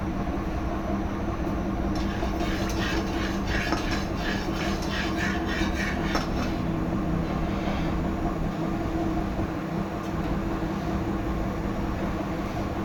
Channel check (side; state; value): both; identical; correlation 1.00